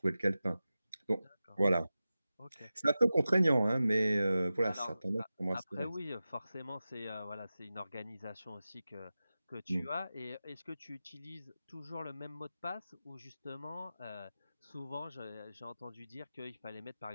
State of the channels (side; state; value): both; inverted; correlation -0.94